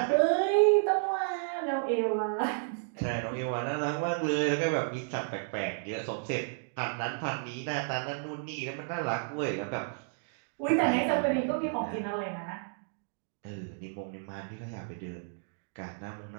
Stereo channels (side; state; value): left; silent; digital silence